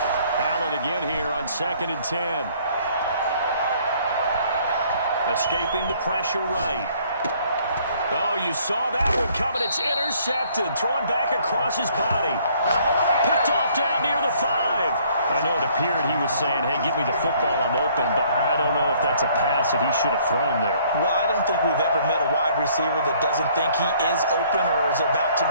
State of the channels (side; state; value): both; inverted; correlation -0.61